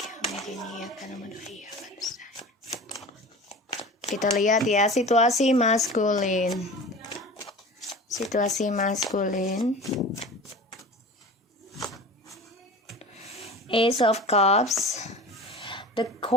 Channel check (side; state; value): both; normal; correlation 0.36